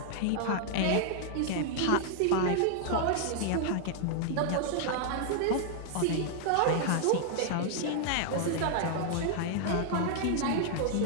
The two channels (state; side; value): different; both; correlation -0.01